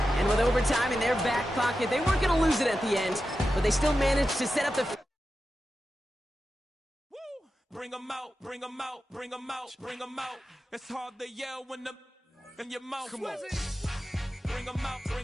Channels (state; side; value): normal; both; correlation 0.91